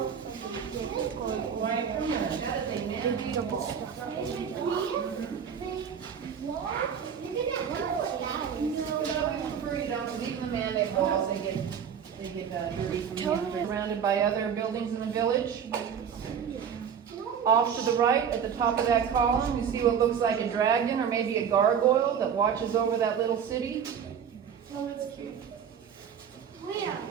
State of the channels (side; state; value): left; quieter; 7.6 dB